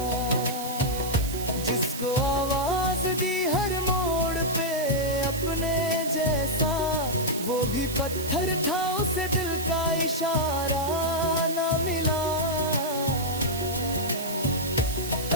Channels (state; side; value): noise; right; hiss, 9 dB below the sound